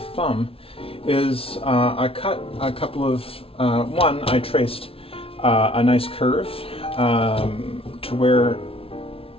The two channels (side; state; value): right; late; 0.27 ms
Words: is I cut a couple of, I traced a nice curve to where